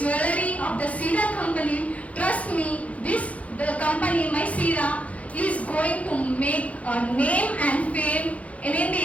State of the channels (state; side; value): late; right; 0.066 ms